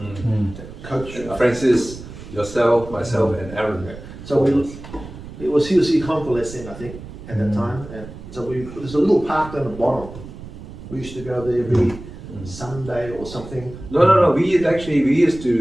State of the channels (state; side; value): noise; right; rumble, 14 dB below the sound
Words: Coach Francis, yourself, myself, and Aaron. So he was convalescing, I think, at that time. And so there's a little park down the bottom. We used to go there every Sunday or something. No. We